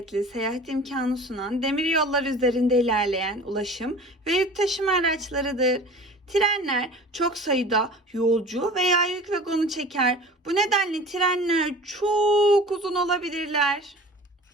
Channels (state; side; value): normal; both; correlation 0.41